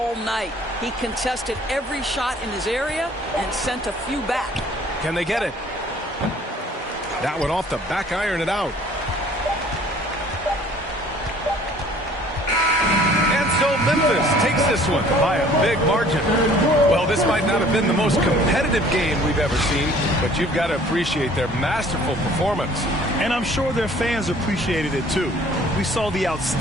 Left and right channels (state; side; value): normal; both; correlation 0.54